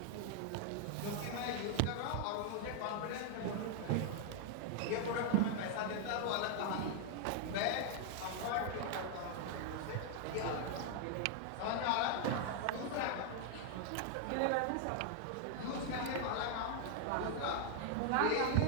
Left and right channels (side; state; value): both; different; correlation 0.00